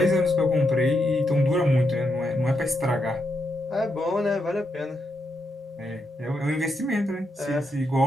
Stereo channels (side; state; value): both; normal; correlation 0.82